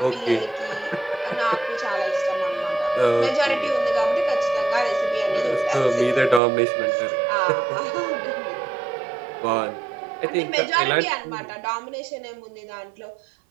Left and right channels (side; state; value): left; drops out; at 6.4 s